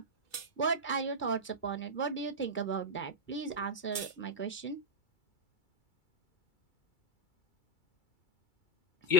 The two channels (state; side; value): late; right; 2.3 ms